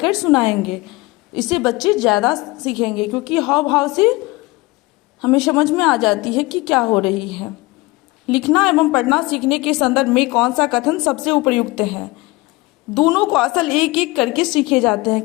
सुनाएंगे। इससे बच्चे ज़्यादा सीखेंगे, क्योंकि हाव भाव से हमें समझ में आ जाती है कि क्या हो रही है। लिखना एवं पढ़ना सीखने के संदर्भ में कौन सा कथन सबसे उपयुक्त है? दोनों को असल एक एक करके सीखे जाते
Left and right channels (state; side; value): quieter; right; 22.0 dB